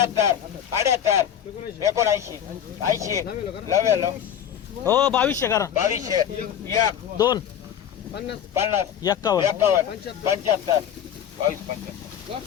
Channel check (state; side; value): quieter; right; 9.4 dB